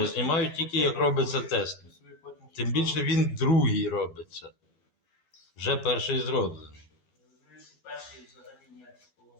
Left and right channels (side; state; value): right; late; 12 ms